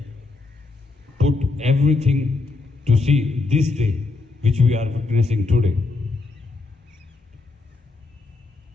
put everything to see this day which we are witnessing today.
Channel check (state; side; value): quieter; right; 3.9 dB